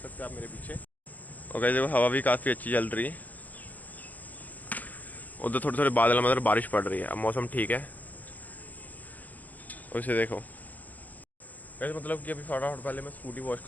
हैं आप मेरे पीछे। और गाइस देखो हवा भी काफ़ी अच्छी चल रही है, उधर थोड़े थोड़े बादल मतलब बारिश पड़ रही है। अब मौसम ठीक है, उसे देखो वैसे मतलब कि अभी फटाफट पहले मैं स्कूटी वॉश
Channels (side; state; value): right; late; 0.080 ms